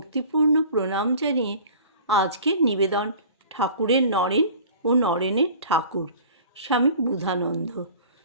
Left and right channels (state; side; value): inverted; both; correlation -0.44